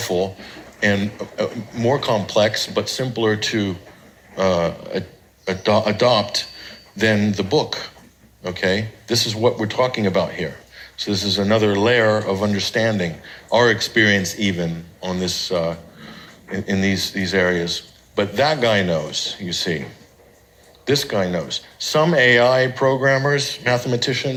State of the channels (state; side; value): identical; both; correlation 1.00